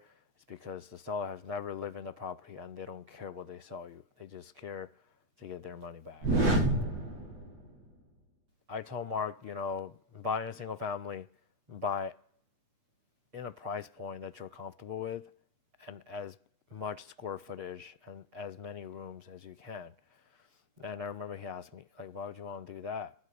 it's because the seller has never lived in the property and they don't care what they sell you. They just care to get their money back. I told Mark, buying a single family, buy in a price point that you're comfortable with and as much square footage and as many rooms as you can. And I remember he asked me, like, why would you want to do that?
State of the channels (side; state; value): left; late; 8.3 ms